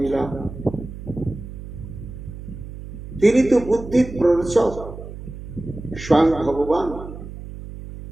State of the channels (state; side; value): noise; right; hum, 12 dB below the sound